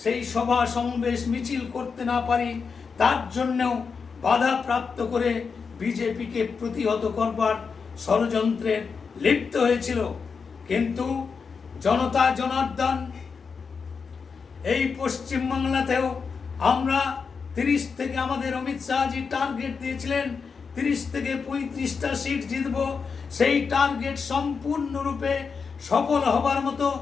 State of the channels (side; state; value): right; quieter; 5.5 dB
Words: সেই সভা সমাবেশ মিছিল করতে না পারি তার জন্যও বাধা প্রাপ্ত করে বিজেপিকে প্রতিহত করবার ষড়যন্ত্রে লিপ্ত হয়েছিল। কিন্তু জনতা জনার্দন এই পশ্চিমবাংলাতেও আমরা 30 থেকে আমাদের অমিত শাহজি টার্গেট দিয়েছিলেন 30 থেকে 35টা সিট জিতব। সেই টার্গেট সম্পূর্ণরূপে সফল হবার মতো